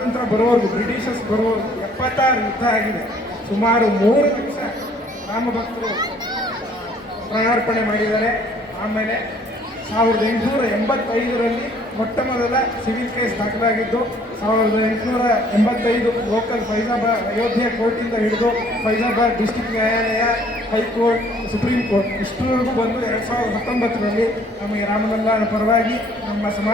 ಬರೋವರೆಗೂ ಬ್ರಿಟಿಷರ್ಸ್ ಬರೋವರೆಗೂ 76 ಯುದ್ಧ ಆಗಿದೆ. ಸುಮಾರು 3 ಲಕ್ಷ ರಾಮಭಕ್ತರು ಪ್ರಾಣಾರ್ಪಣೆ ಮಾಡಿದ್ದಾರೆ. ಆಮೇಲೆ 1885ರಲ್ಲಿ ಮೊಟ್ಟ ಮೊದಲ ಸಿವಿಲ್ ಕೇಸ್ ದಾಖಲಾಗಿದ್ದು 1885 ಲೋಕಲ್ ಫೈಜಾಬಾದ್ ಅಯೋಧ್ಯೆ ಕೋರ್ಟಿಂದ ಹಿಡಿದು ಫೈಜಾಬಾದ್ ಡಿಸ್ಟಿಕ್ ನ್ಯಾಯಾಲಯ, ಹೈಕೋರ್ಟ್, ಸುಪ್ರೀಂ ಕೋರ್ಟ್ ಇಷ್ಟರವರೆಗೂ ಬಂದು 2019ರಲ್ಲಿ ನಮಗೆ ರಾಮಲಲ್ಲಾನ ಪರವಾಗಿ, ನಮ್ಮ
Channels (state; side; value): normal; both; correlation 0.59